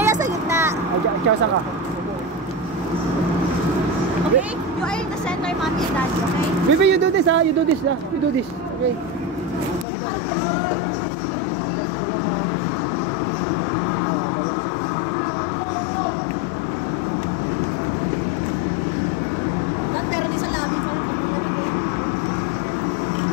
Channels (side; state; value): right; drops out; at 9.9 s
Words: sa gitna. Ay, ikaw saan ka? Okay? You are in the center, mommy and daddy, okay? Baby, you do this ha. You do this. Okay. Pero may sa labi mo.